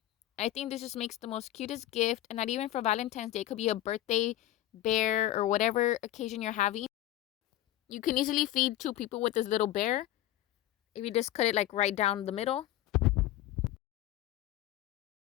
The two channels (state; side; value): quieter; right; 14.2 dB